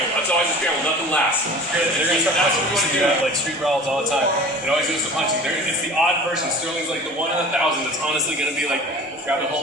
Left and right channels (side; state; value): both; normal; correlation 0.41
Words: It's always a scramble. Nothing lasts. That's what we want to do. Like street brawls all the time. It always goes to punching. It's the odd person. Sterling's like the 1 in 1,000 that's honestly going to be like grabbing a